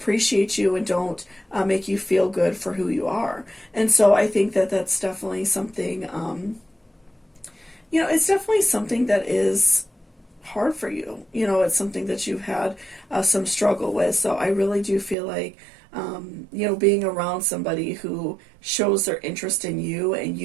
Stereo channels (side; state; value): left; drops out; at 15.2 s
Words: you and don't make you feel good for who you are. And so I think that's definitely something, you know, it's definitely something that is hard for you. You know, it's something that you've had some struggle with. So I really do feel like, you know, being around somebody who shows their interest in you and